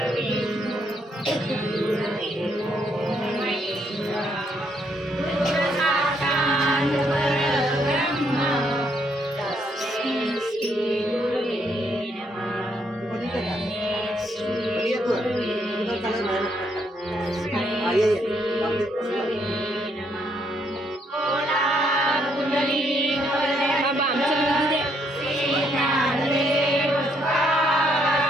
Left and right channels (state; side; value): normal; both; correlation 0.72